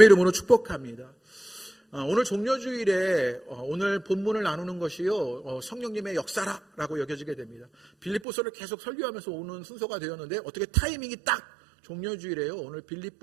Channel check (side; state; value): left; drops out; at 8.2 s